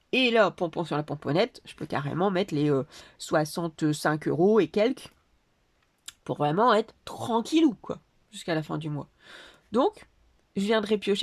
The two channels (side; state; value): both; identical; correlation 1.00